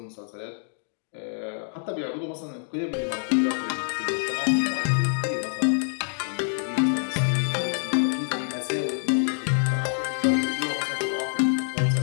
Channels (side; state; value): right; silent; digital silence